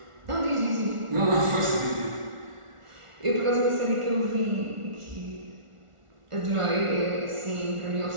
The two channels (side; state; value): left; late; 1.4 ms